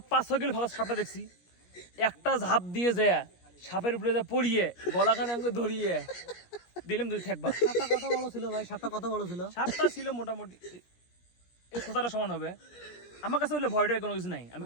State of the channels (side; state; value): right; late; 17 ms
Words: 5-6 কিলো ফাঁকা সাপটা দেখছি, একটা ঝাঁপ দিয়ে যায় সাপের উপরে যা পড়িয়ে গলাখানে আমাকে ধরিয়ে দিলাম, দুই থাকবা। সাপটা কত বড় ছিল ভাই? সাপটা কত বড় ছিল? সাপটা ছিল মোটামুটি এই খোঁচাটা সমান হবে। আমার কাছে হলে ভয়টা কোনো কিছু নাই, আমি